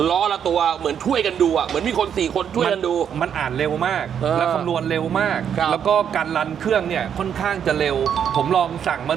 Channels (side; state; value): left; quieter; 8.4 dB